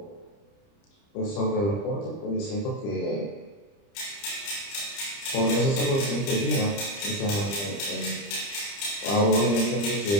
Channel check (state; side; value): late; right; 30 ms